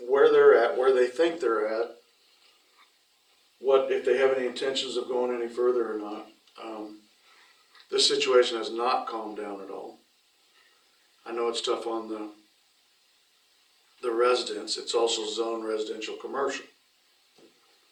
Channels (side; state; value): both; identical; correlation 1.00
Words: they're at, where they think they're at. What, if they have any intentions of going any further or not. This situation has not calmed down at all. I know it's tough on the residents, it's also zone residential commercial,